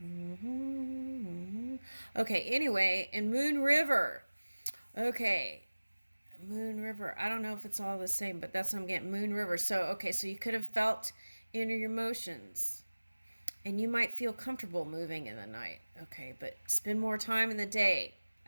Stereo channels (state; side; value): inverted; both; correlation -1.00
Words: Okay, anyway, in Moon River. Okay, Moon River. I don't know if it's all the same, but that's what I'm getting. Moon River. So, okay, so you could have felt inner emotions. And you might feel comfortable moving in the night. Okay, but spend more time in the day,